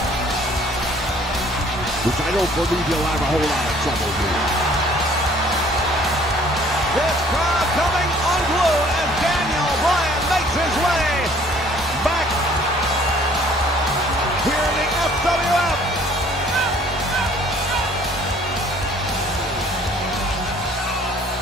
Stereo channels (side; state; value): both; normal; correlation 0.56